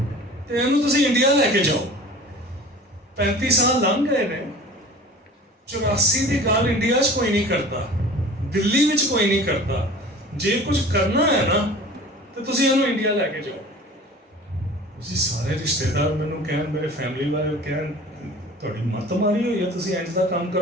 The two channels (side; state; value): both; normal; correlation 0.42